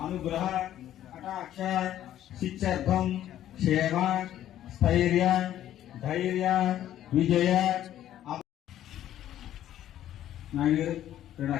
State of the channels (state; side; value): quieter; right; 12.0 dB